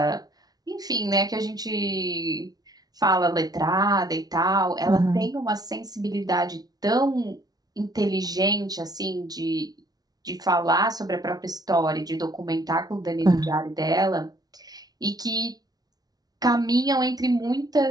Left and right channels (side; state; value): left; late; 0.19 ms